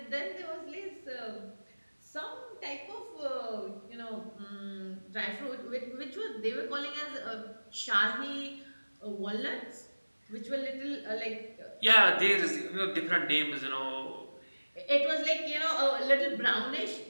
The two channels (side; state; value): both; inverted; correlation -1.00